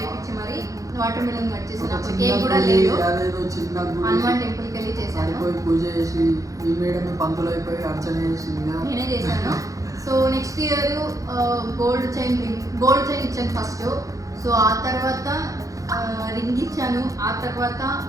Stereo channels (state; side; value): late; left; 0.16 ms